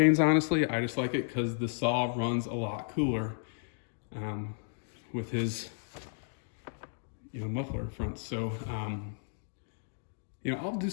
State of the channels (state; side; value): silent; right; digital silence